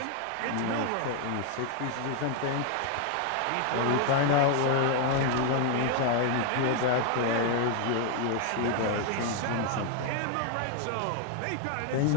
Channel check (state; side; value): different; both; correlation 0.00